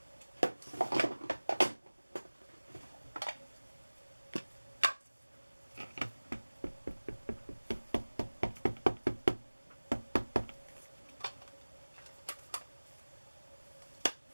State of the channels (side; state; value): both; inverted; correlation -1.00